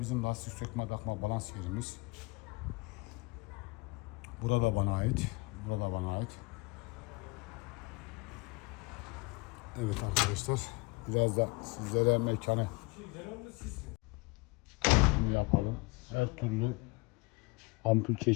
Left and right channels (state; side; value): quieter; right; 25.5 dB